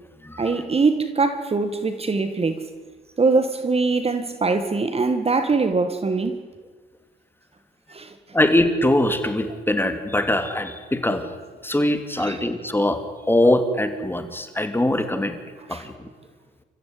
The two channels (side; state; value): both; normal; correlation 0.72